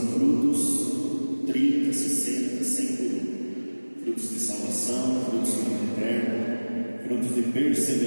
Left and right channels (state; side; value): inverted; both; correlation -1.00